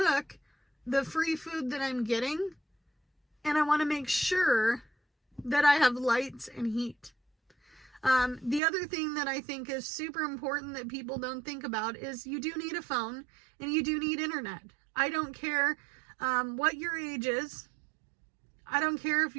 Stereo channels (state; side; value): drops out; left; at 8.6 s